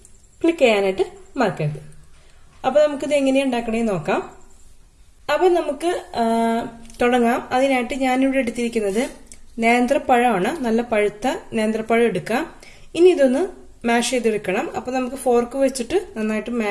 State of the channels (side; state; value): both; identical; correlation 1.00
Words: ക്ലിക്ക് ചെയ്യാനായിട്ട് മറക്കരുത്. അപ്പോൾ നമുക്കിത് എങ്ങനെയാണ് ഉണ്ടാക്കണേന്ന് നോക്കാം. അപ്പോൾ നമുക്ക് തുടങ്ങാം. അതിനായിട്ട് ഞാനിവിടെ എടുത്തിരിക്കുന്നത് നേന്ത്രപ്പഴമാണ്. നല്ല പഴുത്ത നേന്ത്രപ്പഴം എടുക്കാം. ഇനി ഇതൊന്ന് മാഷ് ചെയ്തെടുക്കണം. അപ്പോൾ നമുക്ക് ഫോർക്ക് വെച്ചിട്ട് നന്നായിട്ട്